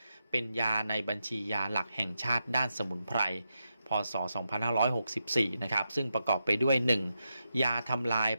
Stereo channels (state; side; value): inverted; both; correlation -0.86